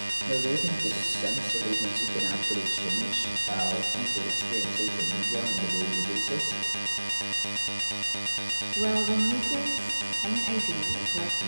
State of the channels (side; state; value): both; inverted; correlation -1.00